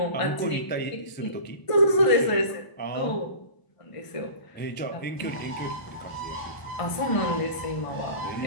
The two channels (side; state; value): right; late; 1.0 ms